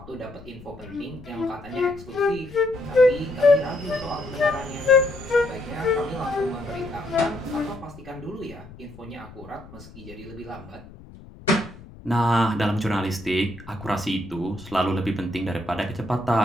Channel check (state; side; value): noise; left; rumble, 18 dB below the sound